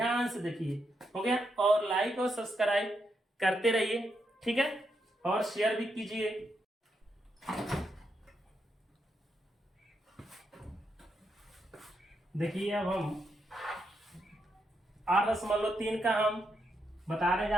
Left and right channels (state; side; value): normal; both; correlation 0.81